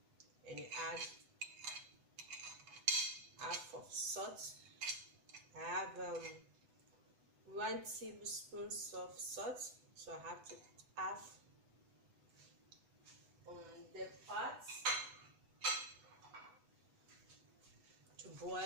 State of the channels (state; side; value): late; left; 8.0 ms